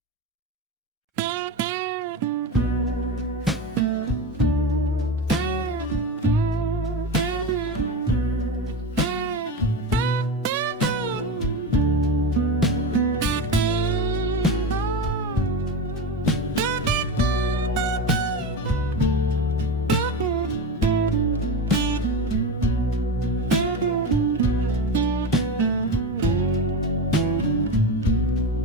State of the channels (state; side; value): normal; both; correlation 0.22